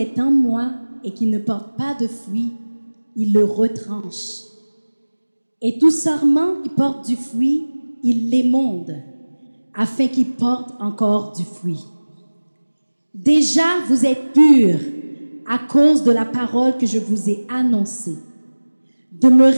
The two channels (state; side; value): inverted; both; correlation -1.00